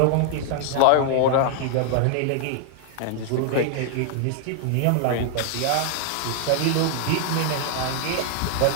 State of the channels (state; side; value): different; both; correlation 0.00